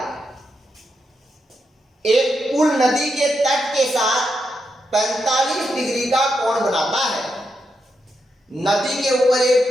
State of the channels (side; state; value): both; normal; correlation 0.84